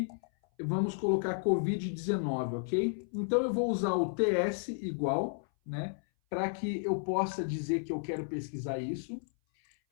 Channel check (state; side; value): silent; right; 56 dB below the other